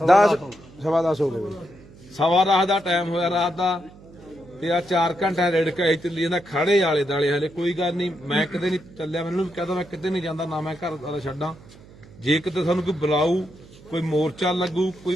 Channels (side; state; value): right; noise; hum, 22 dB below the sound